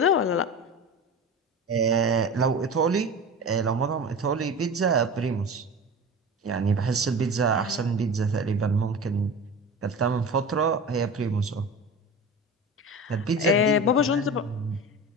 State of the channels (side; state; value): both; normal; correlation 0.31